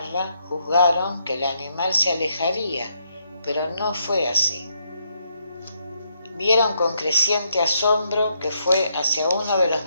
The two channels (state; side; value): inverted; both; correlation -0.76